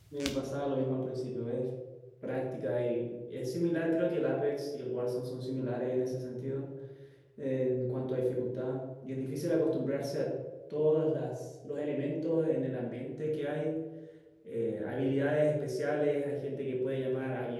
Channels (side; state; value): both; identical; correlation 1.00